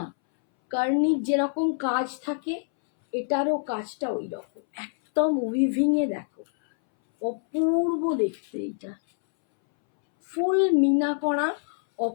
কার্নির যেরকম কাজ থাকে এটারও কাজটা ওই রকম একদম উইভিংয়ে দেখো, অপূর্ব দেখতে। এটা ফুল মিনা করা,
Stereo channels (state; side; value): silent; right; 61 dB below the other